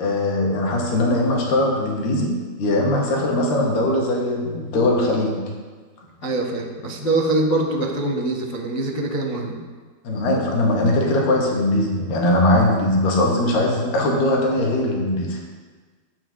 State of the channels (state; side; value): late; right; 13 ms